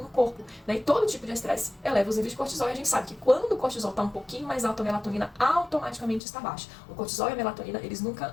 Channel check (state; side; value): drops out; right; at 6.2 s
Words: no corpo, né? E todo tipo de estresse eleva os níveis de cortisol, e a gente sabe que quando o cortisol está um pouquinho mais alto, a melatonina automaticamente está baixa. O cortisol e a melatonina, eles